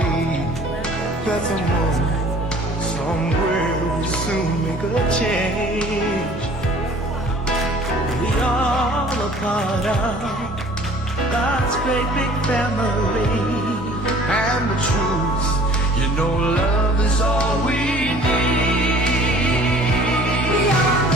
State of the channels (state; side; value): normal; both; correlation 0.50